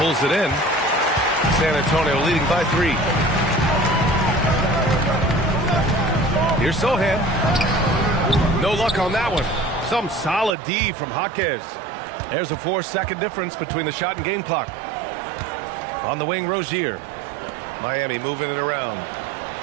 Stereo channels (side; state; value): left; drops out; at 10.5 s